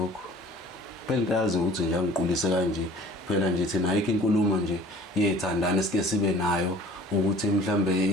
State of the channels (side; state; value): both; normal; correlation 0.48